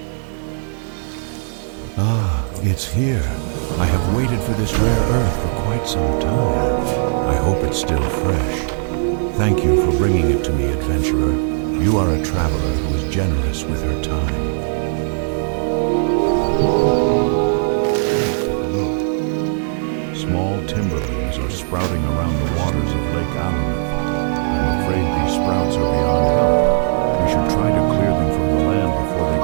Ah, it's here. I have waited for this rare earth for quite some time. I hope it's still fresh. Thank you for bringing it to me, adventurer. You are a traveler who is generous with her time. Small timberlings are sprouting around the waters of Lake Azeroth. I'm afraid these sprouts are beyond help. We should try to clear them from the land before they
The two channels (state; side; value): silent; left; digital silence